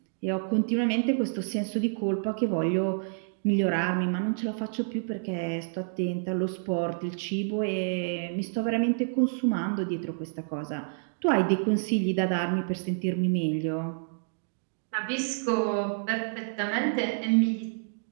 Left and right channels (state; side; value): silent; left; digital silence